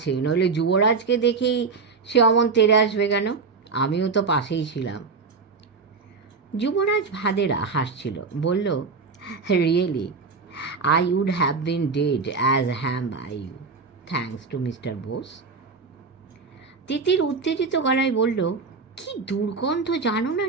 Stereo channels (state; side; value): quieter; left; 4.7 dB